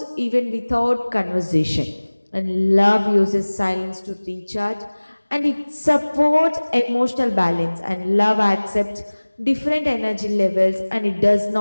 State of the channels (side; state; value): both; inverted; correlation -1.00